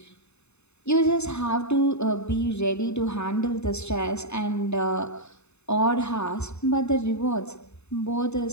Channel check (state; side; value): late; right; 0.81 ms